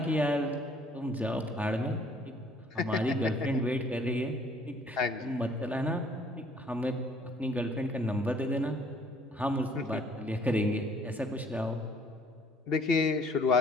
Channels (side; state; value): both; normal; correlation 0.59